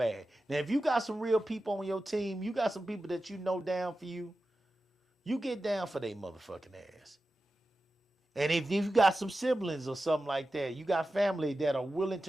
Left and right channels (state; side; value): normal; both; correlation 0.93